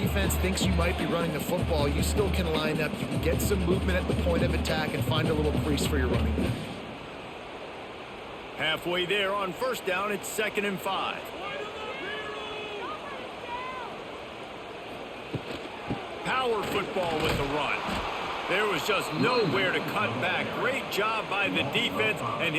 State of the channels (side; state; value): both; identical; correlation 1.00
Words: thinks you might be running the football, you still can line up. You can get some movement at the point of attack and find a little crease for your running back. Halfway there on first down, it's 2nd and 5. Power football with the run. There was just nowhere to cut back. Great job by the defense, and